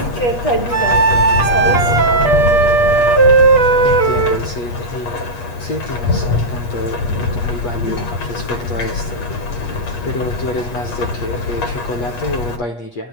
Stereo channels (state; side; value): late; right; 8.3 ms